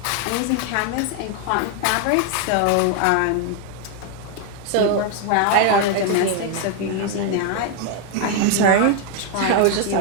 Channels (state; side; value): different; both; correlation 0.01